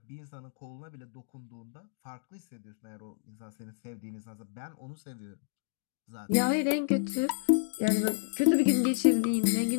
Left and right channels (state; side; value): silent; right; digital silence